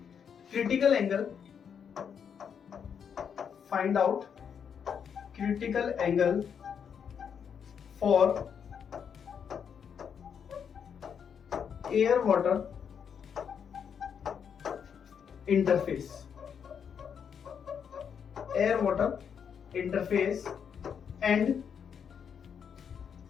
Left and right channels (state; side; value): quieter; right; 7.4 dB